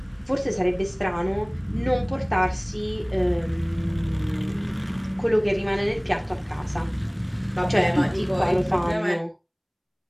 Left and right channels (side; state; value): both; identical; correlation 1.00